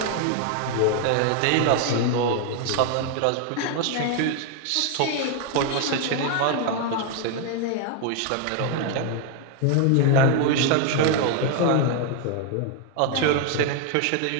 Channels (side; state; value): both; different; correlation 0.00